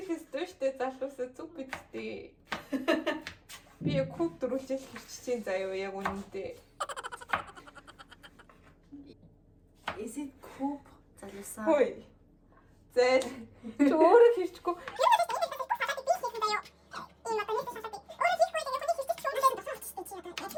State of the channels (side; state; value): both; identical; correlation 1.00